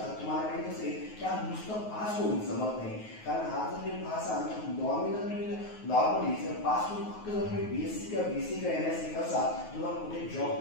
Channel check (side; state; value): right; late; 9.4 ms